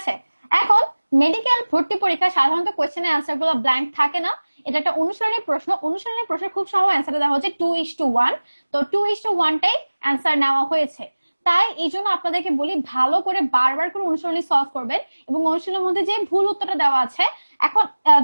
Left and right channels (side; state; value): both; inverted; correlation -1.00